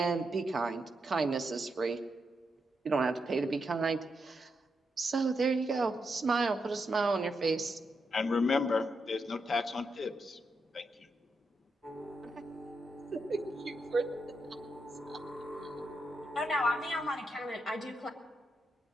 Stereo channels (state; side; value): normal; both; correlation 0.83